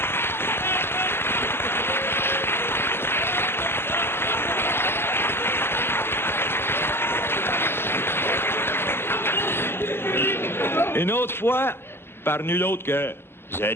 Une autre fois, par nul autre que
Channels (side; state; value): right; late; 0.11 ms